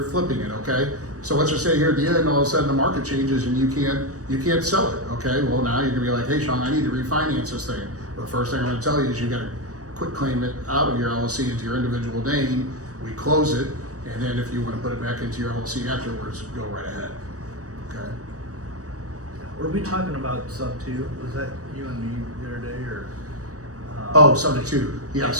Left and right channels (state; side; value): late; left; 0.66 ms